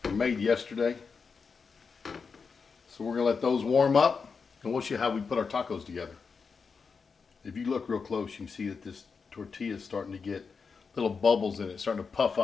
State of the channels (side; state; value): right; quieter; 5.3 dB